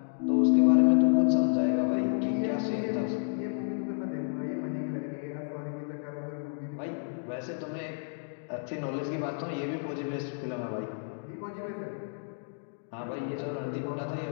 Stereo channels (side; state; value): right; silent; digital silence